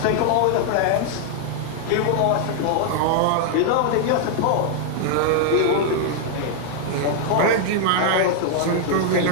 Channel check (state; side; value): different; both; correlation 0.00